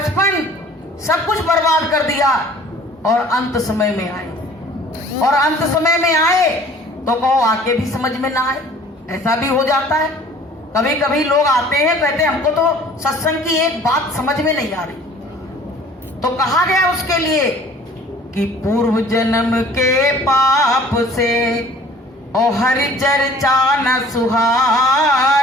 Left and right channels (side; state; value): both; normal; correlation 0.50